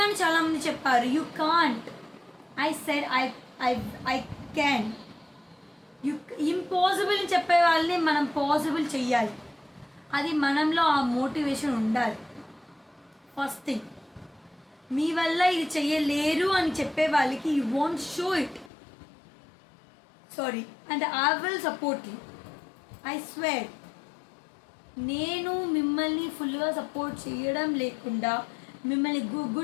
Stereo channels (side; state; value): right; drops out; at 18.7 s